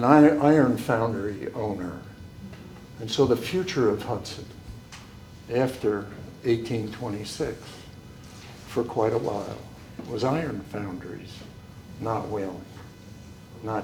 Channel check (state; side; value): identical; both; correlation 1.00